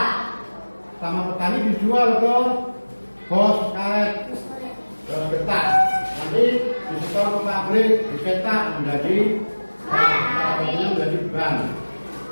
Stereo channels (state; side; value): inverted; both; correlation -1.00